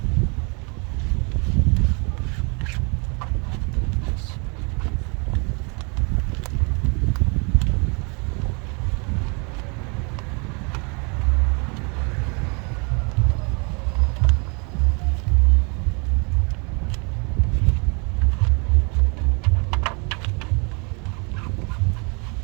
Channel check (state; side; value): quieter; left; 33.3 dB